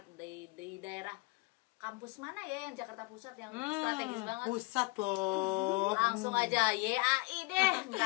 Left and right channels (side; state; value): right; quieter; 26.4 dB